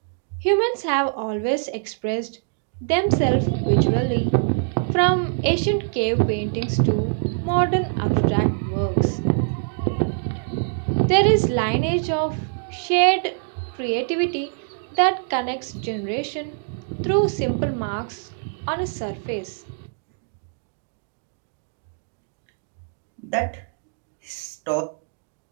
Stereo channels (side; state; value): left; silent; digital silence